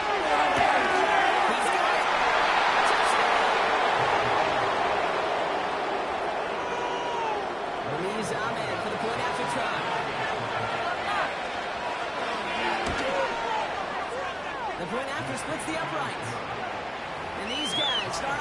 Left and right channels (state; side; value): identical; both; correlation 1.00